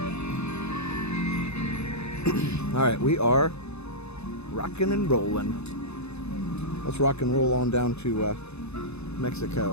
All right, we are rocking and rolling. Let's rock and roll on down to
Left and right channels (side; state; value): right; late; 0.80 ms